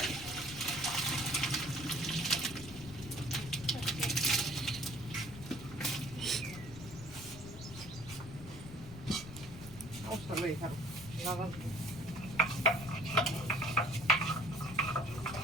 অবস্থা লই খারাপ লাগা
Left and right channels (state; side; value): noise; left; rumble, 13 dB below the sound